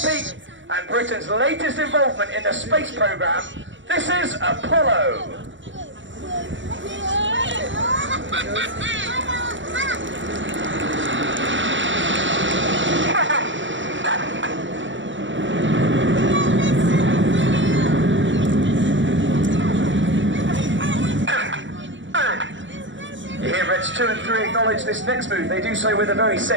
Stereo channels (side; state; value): left; late; 0.55 ms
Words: Peake and Britain's latest involvement in the space program, this is Apollo. You hear Reds 2 and 3 acknowledge this next move. They do so with a very